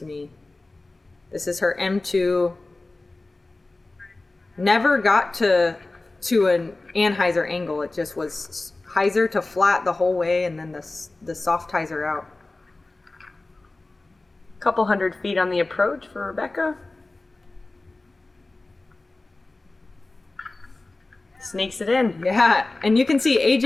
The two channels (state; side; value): quieter; right; 3.1 dB